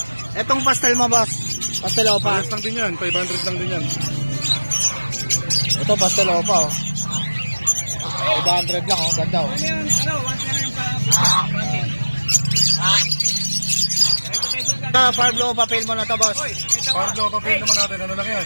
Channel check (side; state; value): both; inverted; correlation -1.00